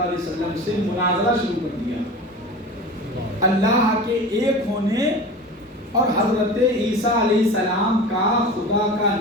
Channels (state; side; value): normal; both; correlation 0.33